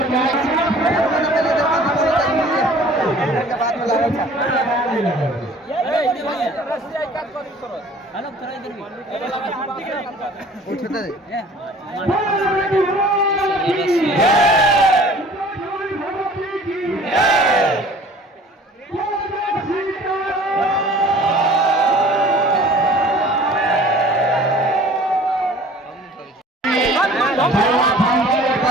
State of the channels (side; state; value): both; normal; correlation 0.49